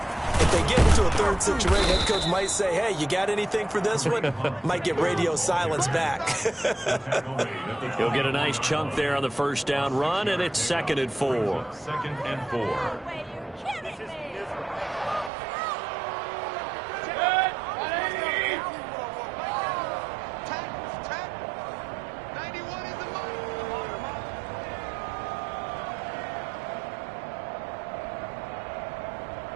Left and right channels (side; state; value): left; drops out; at 15.3 s